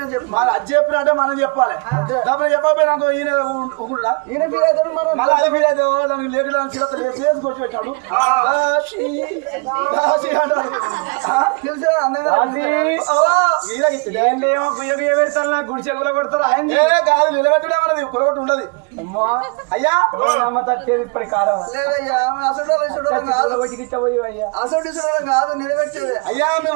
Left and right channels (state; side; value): quieter; left; 33.5 dB